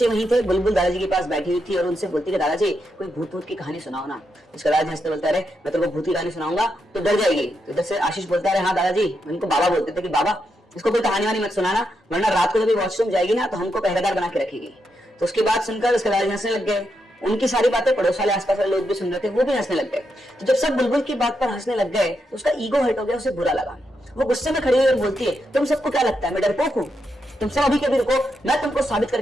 वहीं थे। बुलबुल दादाजी के पास बैठी हुई थी और उनसे बोलती है दादाजी कोई भूत भूत की कहानी सुनाओ ना। उसका दादाजी हंसते बोलता है मैं तेरे को भूत की कहानी सुनाऊंगा तो डर जाएगी। तो इधर से आशीष बोलता है हाँ दादाजी, उनको बाबा बोलते थे कि बाबा इसको कोई कहानी वानी मत सुनाना, वरना रात को जब वॉशरूम जाएगी ना तो हमको पहरेदार बना के रखेगी। तो उसकी बात सुनकर उसके दादाजी हंसने लग गए। उनकी सारी बातें पड़ोस वाले आसपास वाले लोग भी सुन रहे थे, वो भी हंसने लग गए। तो जब सब बुलबुल की बात पर हंसने लग गए तो उसका ईगो हर्ट हो गया, उसे बुरा लगा। वो गुस्से में खड़ी हुई और बोलती है तुम सबको क्या लगता है मैं डरपोक हूँ? तुम सब अभी के अभी रुको, मैं तुमको साबित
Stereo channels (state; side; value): normal; both; correlation 0.83